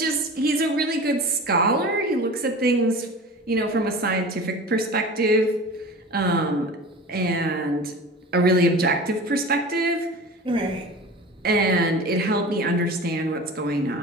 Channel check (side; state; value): both; normal; correlation 0.36